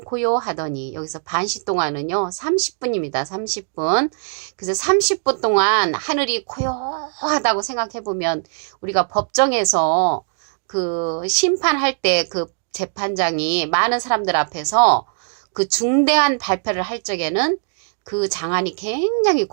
고요하더니, 여기서 반시 동안은요 30분입니다. 30분. 그래서 30분 동안 하늘이 고요하다고 생각해보면 우리가 법정에서 그 심판할 때 그 재판장이 많은 사람들 앞에서 그 중대한 발표를 할 적에는 그 장안이 굉장히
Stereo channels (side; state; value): left; silent; digital silence